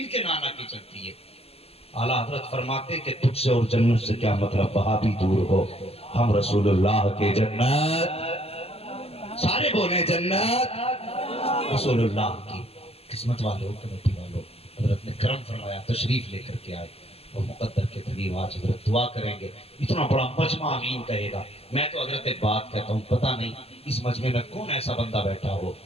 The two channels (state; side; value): late; right; 0.29 ms